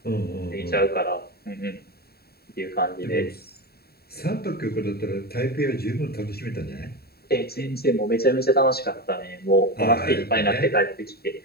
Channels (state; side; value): late; right; 0.45 ms